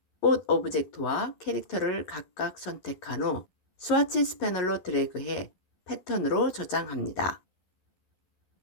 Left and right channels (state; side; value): late; right; 11 ms